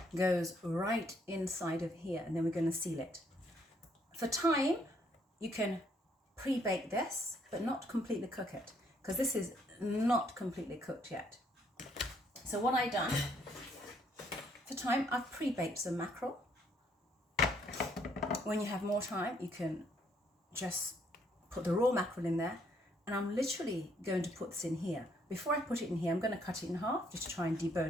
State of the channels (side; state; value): both; normal; correlation 0.69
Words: goes right inside of here, and then we're going to seal it. For time, you can pre-bake this, but not completely cook it, because this is not completely cooked yet. So what I've done, for time, I've pre-baked some mackerel. When you have more time, you can just put the raw mackerel in there, and I'm literally going to put this in here. Before I put it in here, I'm going to cut it in half just to try and